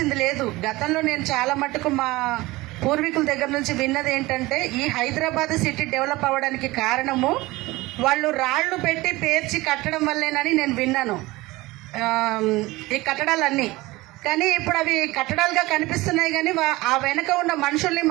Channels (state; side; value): quieter; left; 20.3 dB